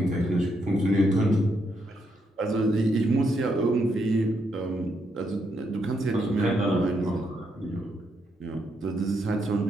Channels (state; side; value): normal; both; correlation 0.78